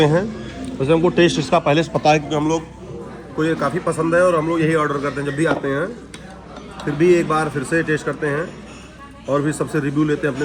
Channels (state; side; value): identical; both; correlation 1.00